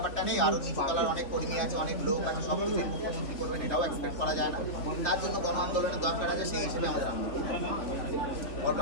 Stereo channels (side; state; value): right; late; 3.4 ms